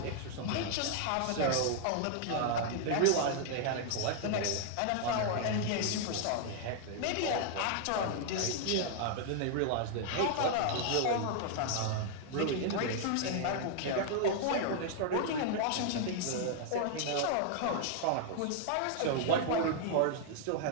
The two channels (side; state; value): both; different; correlation 0.00